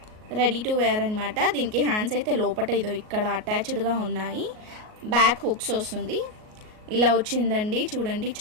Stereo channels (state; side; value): late; left; 38 ms